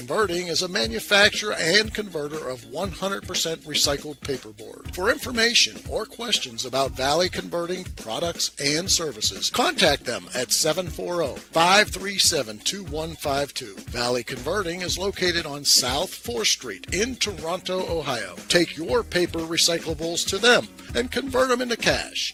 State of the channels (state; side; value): identical; both; correlation 1.00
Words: is a manufacturer and converter of 100% recycled paperboard. For information or questions about Valley Converting products and services, contact them at 740-537-2152. Valley Converting is located on South 4th Street in Toronto, Ohio. Take your paper recyclables to them and convert them into cash.